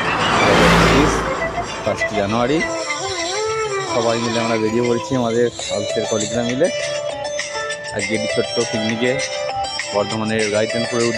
1 জানুয়ারি। সবাই মিলে আমরা বেরিয়ে পড়েছি আমাদের অফিসের কলিগরা মিলে আজকে একটি ছোট্ট পিকনিকে বর্ধমানের গাইতেনপুরের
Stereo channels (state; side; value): identical; both; correlation 1.00